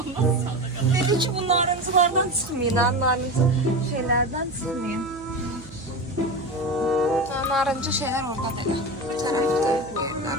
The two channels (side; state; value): right; noise; hum, 18 dB below the sound